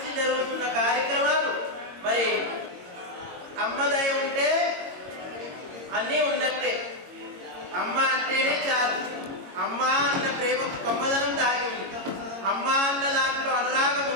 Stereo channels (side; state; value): left; late; 22 ms